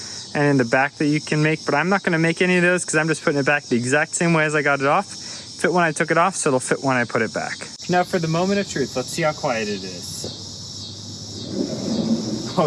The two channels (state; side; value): identical; both; correlation 1.00